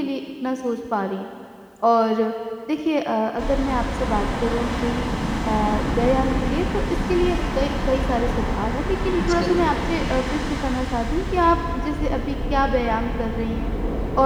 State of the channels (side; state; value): both; identical; correlation 1.00